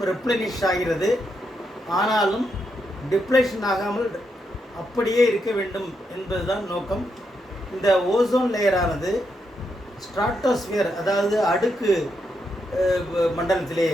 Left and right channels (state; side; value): normal; both; correlation 0.81